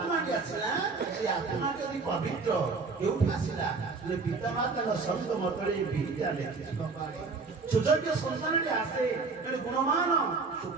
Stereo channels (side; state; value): left; quieter; 4.3 dB